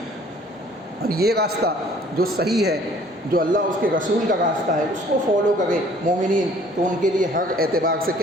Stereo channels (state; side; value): normal; both; correlation 0.55